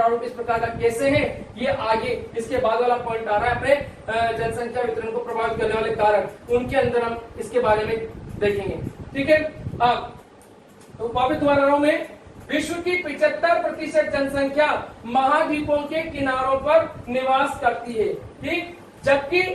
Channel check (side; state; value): both; identical; correlation 1.00